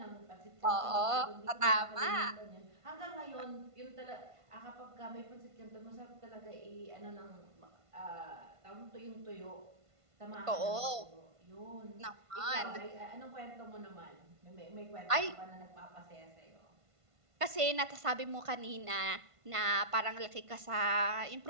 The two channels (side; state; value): left; late; 1.5 ms